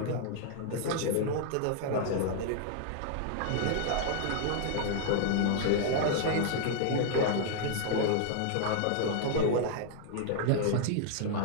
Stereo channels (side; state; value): both; different; correlation 0.00